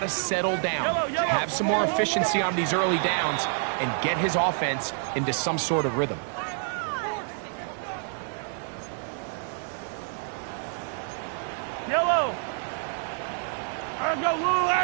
to settle down, have some more efficiency on these early downs, and get his offense into some sort of rhythm. Yellow. Go, Lou,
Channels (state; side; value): silent; left; 60 dB below the other